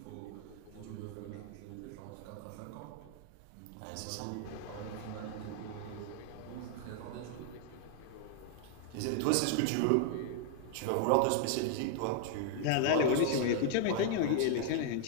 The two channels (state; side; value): different; both; correlation 0.00